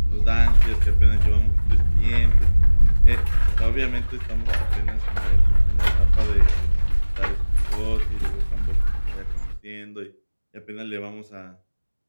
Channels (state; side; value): inverted; both; correlation -1.00